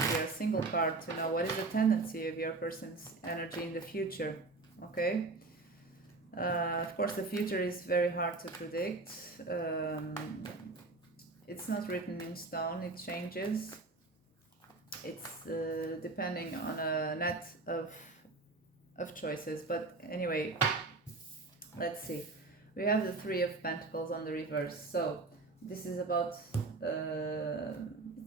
here, a single card, to know what is the tendency of your person's energy in the future. Okay. Of course, the future is very hard to predict. It's not written in stone. It changes. It's depending on a net of choices. But anyway, let's see. We have the 3 of Pentacles on the reverse. So this is about,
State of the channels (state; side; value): quieter; left; 3.5 dB